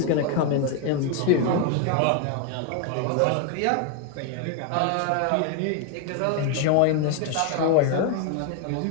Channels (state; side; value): different; both; correlation 0.00